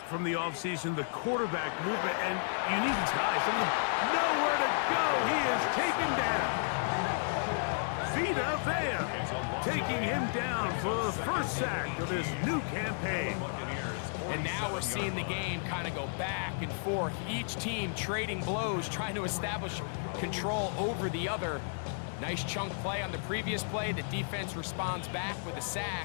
from the offseason, the quarterback movement, and you need guys. I mean, nowhere to go. He is taken down. Vita Vea taking him down for the first sack of this new campaign. And now we're seeing the game kind of go back and forth. Each team trading blows, trying to establish control over the other. Nice chunk play on the previous play. The defense responds back with a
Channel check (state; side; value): silent; right; digital silence